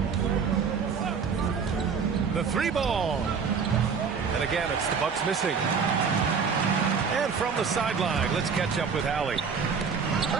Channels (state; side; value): quieter; left; 5.9 dB